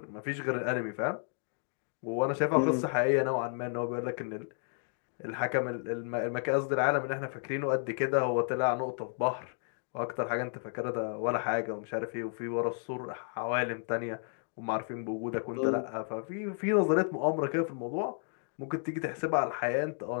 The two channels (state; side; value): silent; right; 56 dB below the other